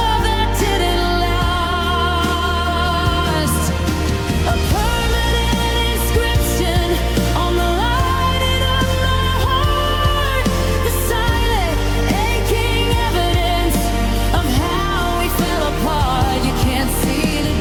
that didn't last. A permanent inscription on the lining of my heart, the silent, aching evidence of how we fell apart. You can't see the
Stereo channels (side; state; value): both; identical; correlation 1.00